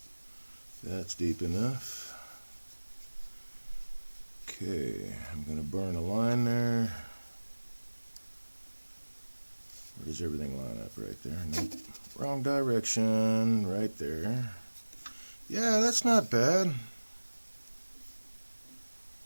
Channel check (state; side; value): inverted; both; correlation -1.00